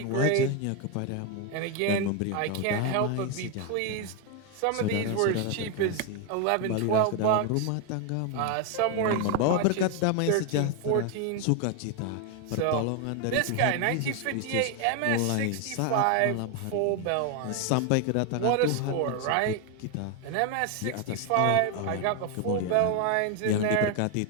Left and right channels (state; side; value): different; both; correlation 0.01